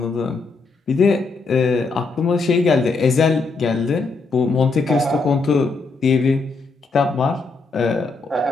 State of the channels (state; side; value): quieter; right; 4.0 dB